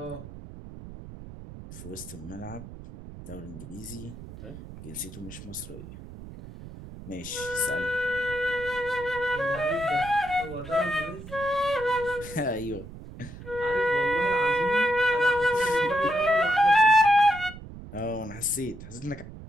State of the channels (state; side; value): noise; right; rumble, 14 dB below the sound